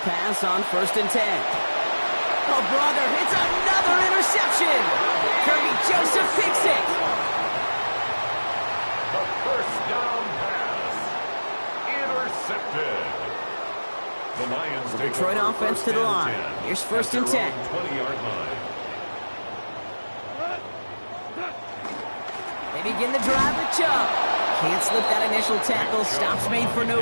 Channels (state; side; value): inverted; both; correlation -1.00